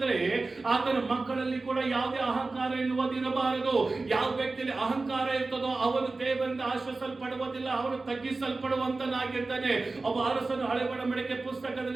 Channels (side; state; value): left; quieter; 3.5 dB